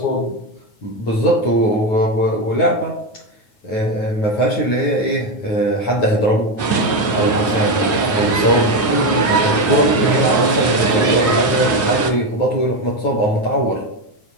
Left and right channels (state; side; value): late; right; 9.5 ms